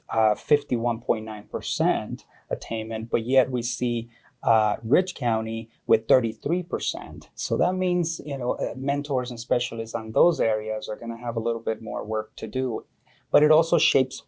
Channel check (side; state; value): both; identical; correlation 1.00